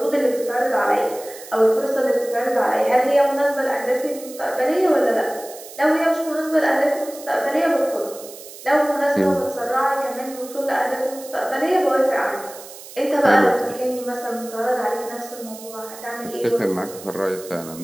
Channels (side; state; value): right; noise; hiss, 16 dB below the sound